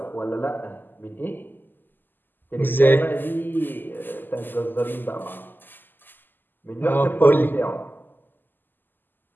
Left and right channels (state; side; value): late; right; 0.091 ms